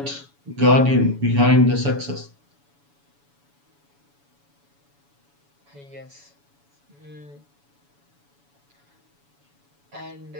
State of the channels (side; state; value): left; late; 7.1 ms